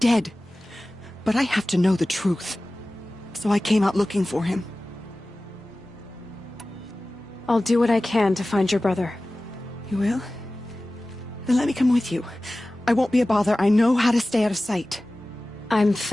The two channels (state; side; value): noise; right; rumble, 30 dB below the sound